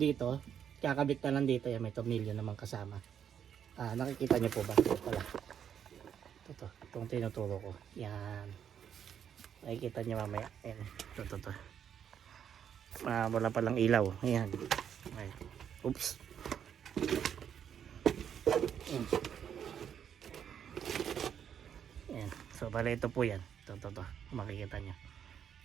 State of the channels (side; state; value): left; quieter; 8.6 dB